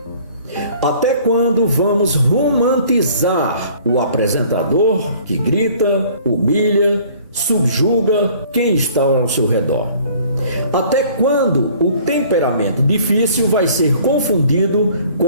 Até quando vamos romantizar o apresentador que grita, humilha, subjuga quem está ao seu redor? Até quando o temperamento difícil vai ser confundido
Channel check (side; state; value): both; inverted; correlation -0.53